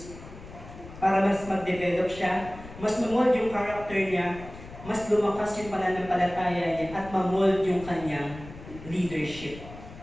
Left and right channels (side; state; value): left; noise; rumble, 15 dB below the sound